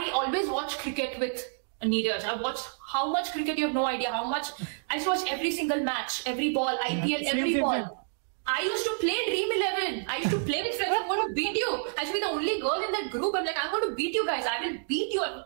always watch cricket with Neeraj. I watched how much cricket, you have no idea how much. I used to watch every single match, every ball, IPL, every ball. I used to play Dream 11. I used to play with friends. I'm going to beat you. I should be the only girl in that group. I'm like, I'm going to beat you guys. I will beat you. I'll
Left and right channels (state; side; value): silent; left; digital silence